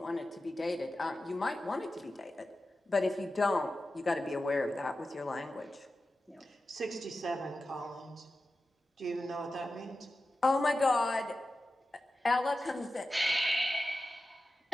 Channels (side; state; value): both; normal; correlation 0.93